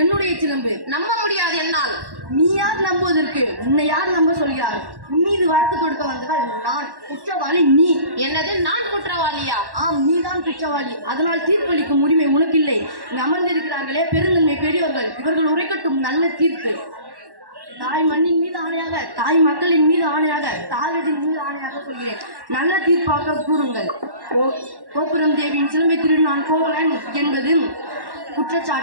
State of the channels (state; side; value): late; left; 1.1 ms